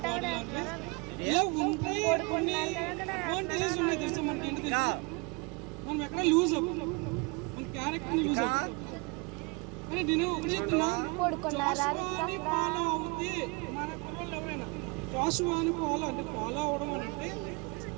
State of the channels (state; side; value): quieter; left; 29.4 dB